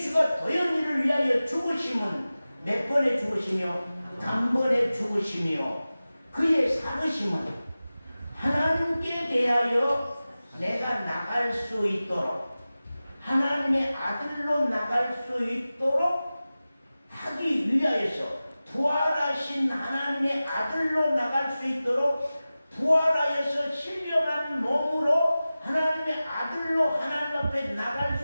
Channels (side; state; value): both; inverted; correlation -0.96